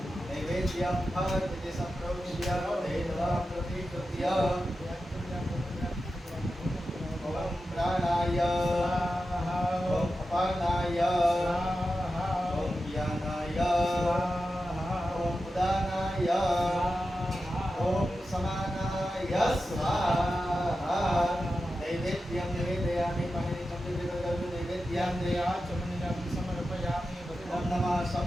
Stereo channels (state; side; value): normal; both; correlation 0.91